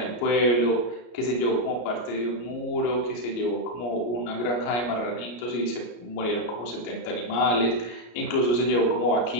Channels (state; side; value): late; right; 33 ms